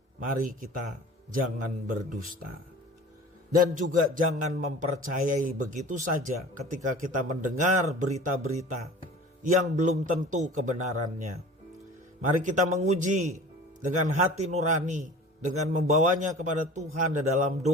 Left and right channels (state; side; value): normal; both; correlation 0.41